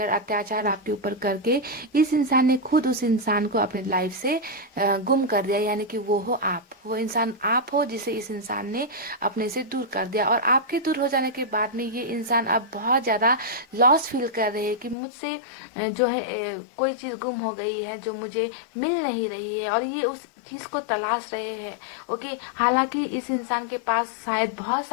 अत्याचार आपके ऊपर करके इस इंसान ने खुद उस इंसान को अपने लाइफ से गुम कर दिया, यानी कि वो हो आप, वो इंसान आप हो जिसे इस इंसान ने अपने से दूर कर दिया। और आपके दूर हो जाने के बाद में ये इंसान अब बहुत ज्यादा लॉस फील कर रहे हैं कि मुझसे जो है कोई चीज गुम हो गई है जो मुझे मिल नहीं रही है, और ये उस चीज को तलाश रहे हैं। ओके, हालांकि इस इंसान के पास शायद बहुत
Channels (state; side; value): drops out; right; at 15.0 s